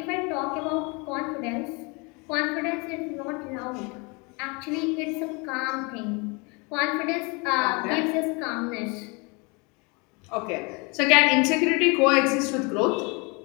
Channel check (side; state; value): right; quieter; 29.7 dB